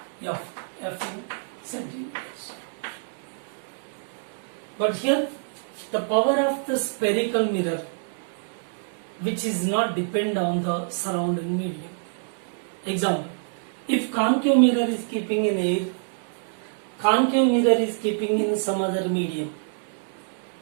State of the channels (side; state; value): left; silent; digital silence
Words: F. F in centimeters. But here the power of the spherical mirror, which is not depend on the surrounding medium. Example, if concave mirror is keeping in air, concave mirror is keeping in some other medium,